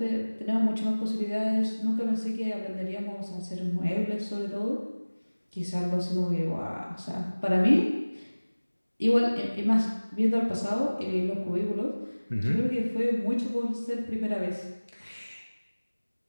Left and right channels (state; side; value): inverted; both; correlation -1.00